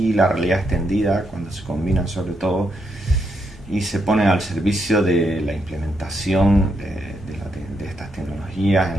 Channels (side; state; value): both; normal; correlation 0.80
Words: la realidad extendida cuando se combinan sobre todo y se ponen al servicio de la implementación de estas tecnologías en